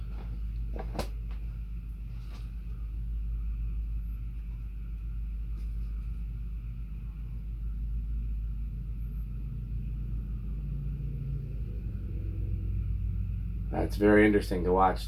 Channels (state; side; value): identical; both; correlation 1.00